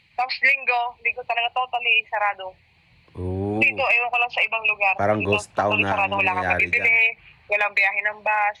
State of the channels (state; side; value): identical; both; correlation 1.00